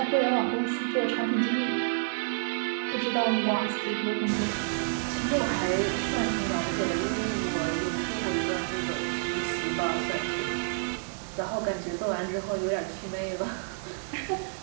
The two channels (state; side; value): silent; left; digital silence